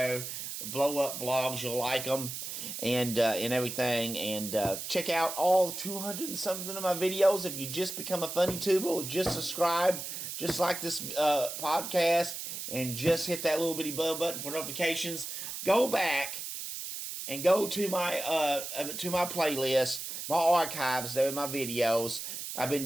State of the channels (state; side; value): noise; right; hiss, 7 dB below the sound